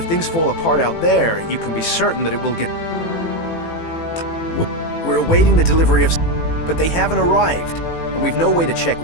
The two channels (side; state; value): right; late; 18 ms